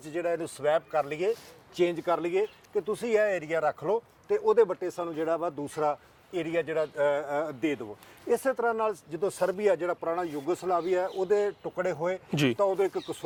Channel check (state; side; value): identical; both; correlation 1.00